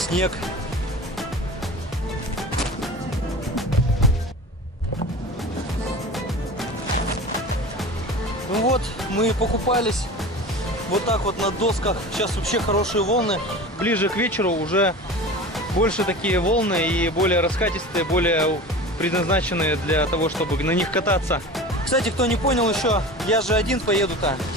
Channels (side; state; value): both; normal; correlation 0.34